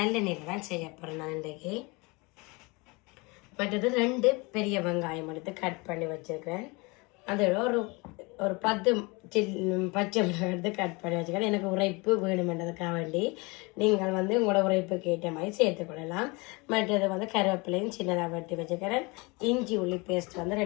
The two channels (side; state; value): right; quieter; 26.8 dB